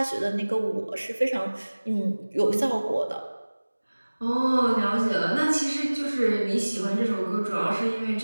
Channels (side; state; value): both; inverted; correlation -1.00